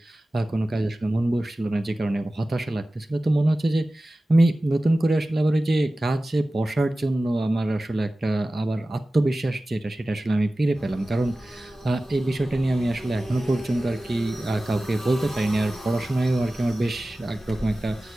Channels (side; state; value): both; normal; correlation 0.96